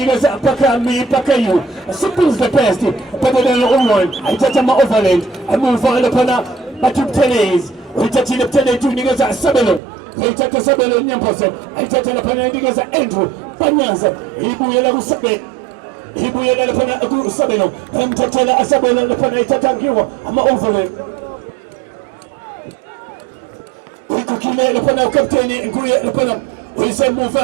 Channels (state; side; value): drops out; left; at 9.8 s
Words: pakayu simple is the best better than all one ayithatha ama-overland emuva laphana bathi ubuthelezi uyithathile buthelethi uyinikeza isabelo ayithatha isabelo nyamposo ayithatha laphana uyinikeza Andrew Banyaza ibuyela kusabelo ibuyela laphana kusabelo emthathela asabelo laphana ayithatha ngiwo ama-overland uyikhukhile laphana ukapteni nguye laphana